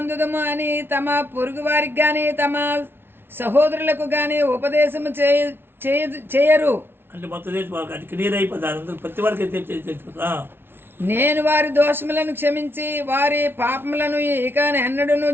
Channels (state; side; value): late; left; 0.11 ms